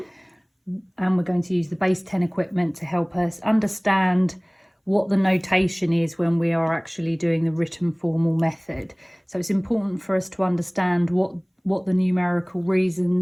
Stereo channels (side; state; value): both; identical; correlation 1.00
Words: and we're going to use the base 10 equipment to help us understand what the notation is when we are actually doing the written formal method. So it's important for us to understand what the numerical